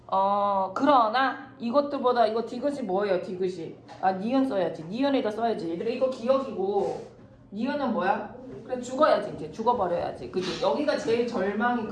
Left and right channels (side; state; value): both; identical; correlation 1.00